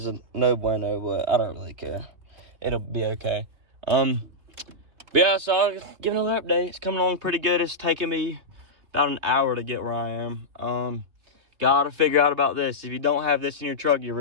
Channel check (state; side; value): late; left; 3.2 ms